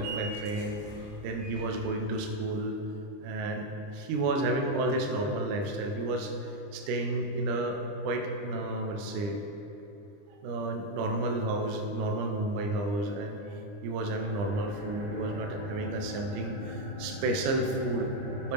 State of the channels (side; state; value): left; late; 29 ms